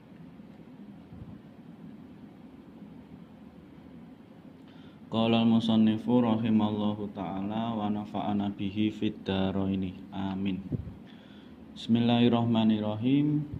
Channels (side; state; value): both; identical; correlation 1.00